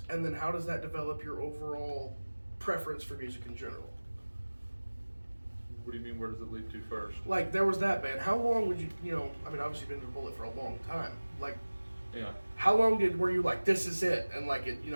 and then how does that develop your overall preference for music in general? What do you mean, where does it lead to first? Like, there was that band. How long would you I mean, obviously you've been to Bullet for a long time. Like, yeah. How long were you like, this is it, and like,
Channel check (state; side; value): inverted; both; correlation -1.00